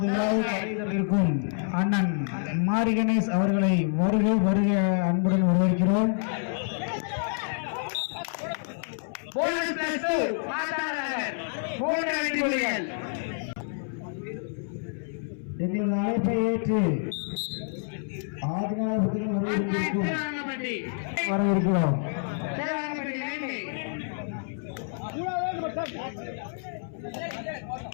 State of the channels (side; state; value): right; silent; 59 dB below the other